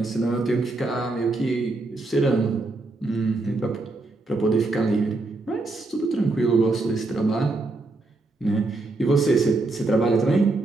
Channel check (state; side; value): quieter; left; 3.2 dB